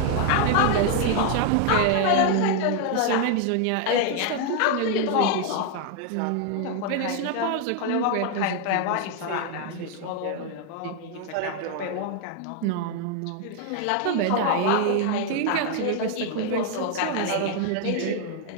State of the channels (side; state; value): both; different; correlation 0.00